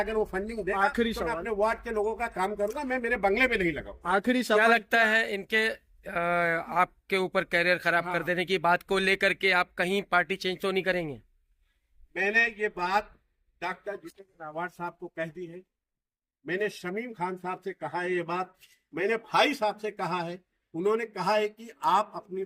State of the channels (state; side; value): identical; both; correlation 1.00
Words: वो फंडिंग दे आखिरी तो मैं अपने वार्ड के लोगों का काम करूंगा, मैं मेरे बंगले में नहीं लगाऊंगा। आखिरी क्या सवाल, लगता है इनके आपके ऊपर कैरियर खराब कर देने की बात को लेकर के आप कहीं पार्टी चेंज तो नहीं करेंगे? मैंने ये बात डॉक्टर जितेंद्र अवार्ड साहब को कह दी है, मैंने शमीम खान साहब से कहा है ये बात, मैंने भाई साहब से कहा है, उन्होंने कहा है कि आप अपनी